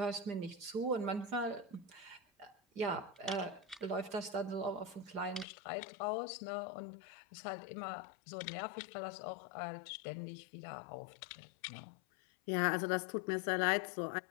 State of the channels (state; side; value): drops out; right; at 5.5 s